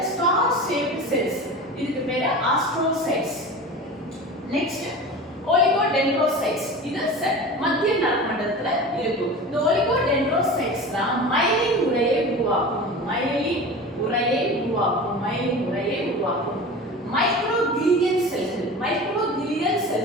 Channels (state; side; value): normal; both; correlation 0.33